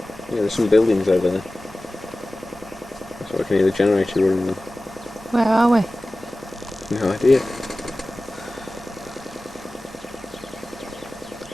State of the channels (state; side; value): normal; both; correlation 0.96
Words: There's some buildings over there. That's what I can hear the generator running. Where are we? No idea.